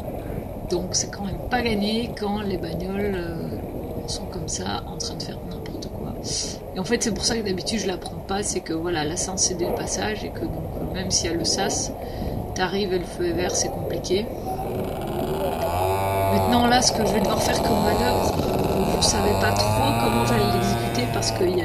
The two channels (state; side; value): identical; both; correlation 1.00